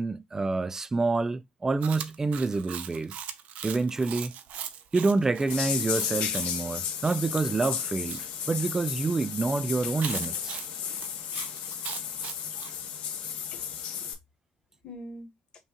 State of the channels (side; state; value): both; normal; correlation 0.73